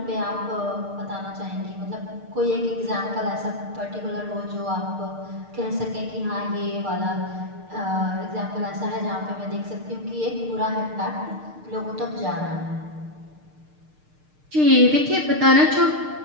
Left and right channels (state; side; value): late; left; 6.6 ms